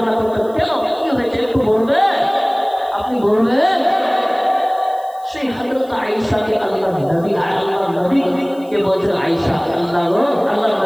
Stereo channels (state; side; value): noise; right; hiss, 27 dB below the sound